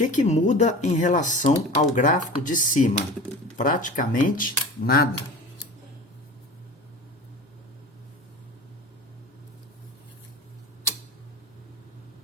muda em relação ao gráfico de cima? Praticamente nada.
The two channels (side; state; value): both; normal; correlation 0.36